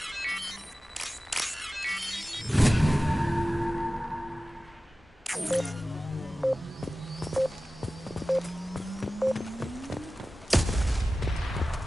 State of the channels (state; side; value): normal; both; correlation 0.96